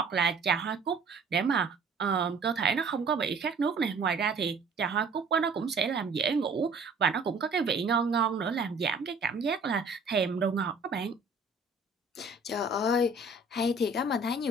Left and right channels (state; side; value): quieter; left; 3.6 dB